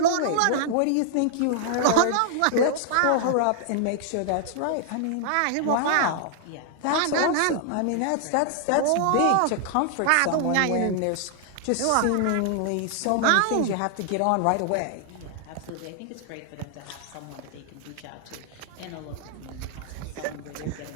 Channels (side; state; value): both; different; correlation -0.01